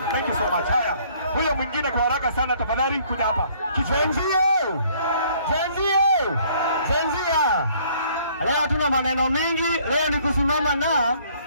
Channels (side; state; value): both; inverted; correlation -0.61